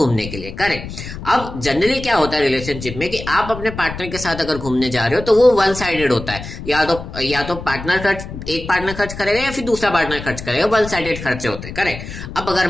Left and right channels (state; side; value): noise; left; rumble, 10 dB below the sound